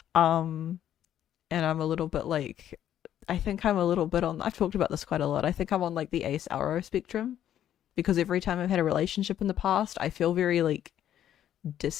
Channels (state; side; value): quieter; right; 10.9 dB